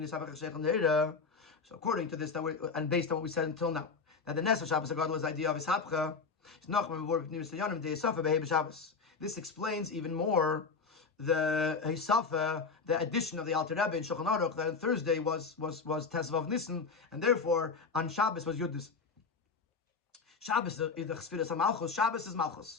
So according to this, and based on what we said until now, that the Nes of Shabbos Hagadol is the idea of Ishapcha. This explains even more the Hisafa, the addition of the Alter Rebbe in Shulchan Aruch, that on Thursday was Tezvav Nissen, and therefore on Shabbos was Yud Nissen. Shabbos is the Chsfiras HaMalchus. Shabbos is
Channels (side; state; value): right; quieter; 4.8 dB